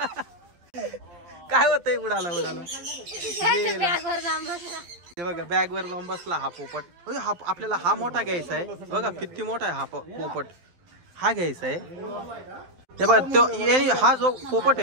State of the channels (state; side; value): late; left; 12 ms